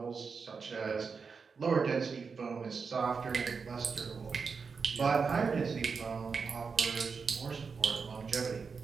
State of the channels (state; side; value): quieter; left; 5.3 dB